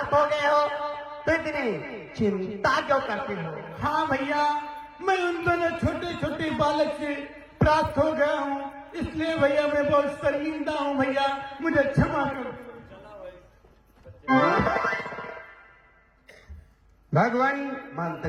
हो गए हो तो इतनी चिंता क्यों करते हो? हाँ भैया, मैं उन दोनों छोटे छोटे बालक से प्राप्त हो गया हूँ, इसलिए भैया मैं बहुत शर्मिंदा हूँ भैया, मुझे क्षमा करो। भगवान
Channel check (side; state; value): both; identical; correlation 1.00